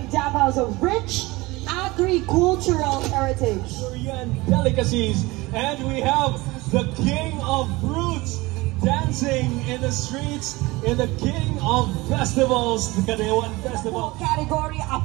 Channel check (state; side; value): quieter; left; 21.7 dB